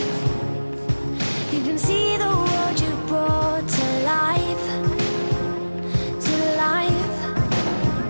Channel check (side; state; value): both; inverted; correlation -1.00